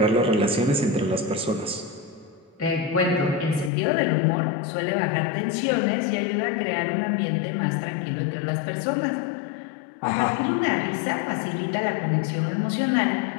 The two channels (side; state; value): right; drops out; at 3.7 s